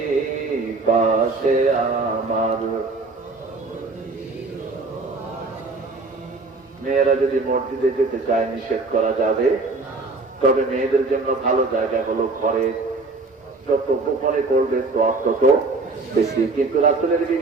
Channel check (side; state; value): left; quieter; 3.6 dB